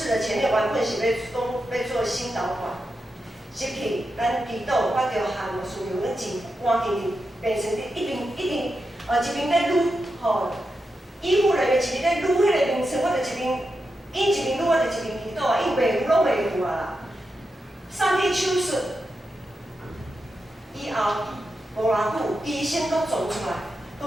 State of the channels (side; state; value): both; normal; correlation 0.88